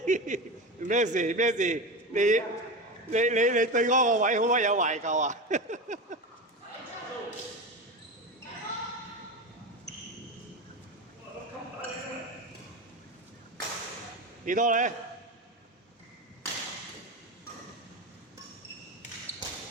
咩事咩事？你對嗰個位好乜有懷舊啊？幾多咧？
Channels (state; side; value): normal; both; correlation 0.22